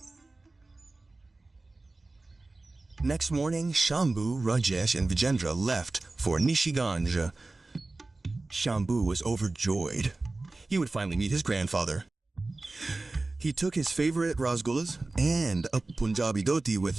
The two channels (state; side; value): quieter; left; 3.2 dB